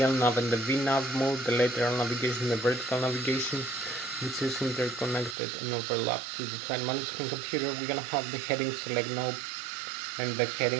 LNAV and the VNAV mode, the lateral navigation, the vertical navigation, which is interconnected and overlapped to the flight management computer. We're gonna have the heading select knob and the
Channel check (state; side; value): drops out; left; at 5.4 s